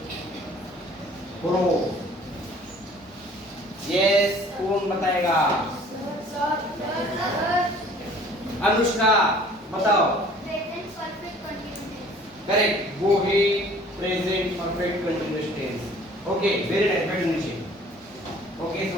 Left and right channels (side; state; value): both; normal; correlation 0.52